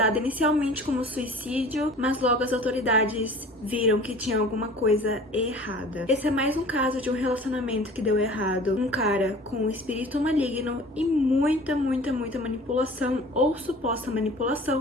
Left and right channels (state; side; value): normal; both; correlation 0.44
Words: inicialmente como suicídio, mas logo as autoridades viram que tinha alguma coisa errada. Esse é mais um caso de um relacionamento que deu errado. Um cara com espírito maligno e muita manipulação ou suposta manipulação,